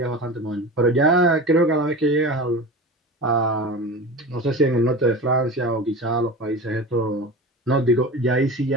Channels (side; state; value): both; normal; correlation 0.31